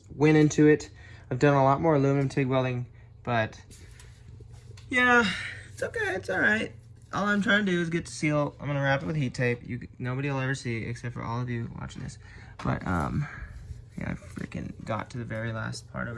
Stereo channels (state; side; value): identical; both; correlation 1.00